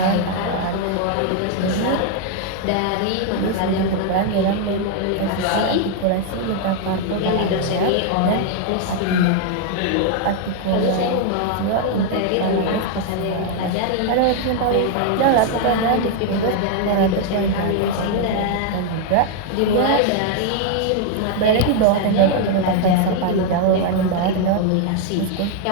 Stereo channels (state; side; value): different; both; correlation 0.00